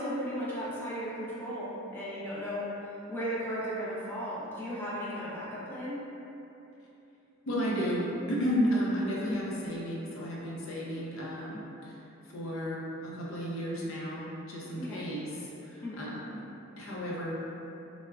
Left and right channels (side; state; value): both; normal; correlation 0.50